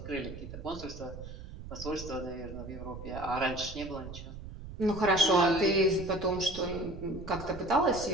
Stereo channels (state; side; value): noise; right; rumble, 11 dB below the sound